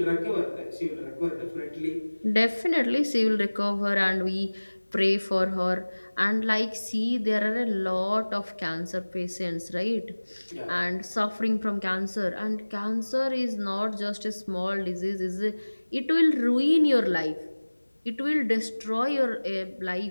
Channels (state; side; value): inverted; both; correlation -1.00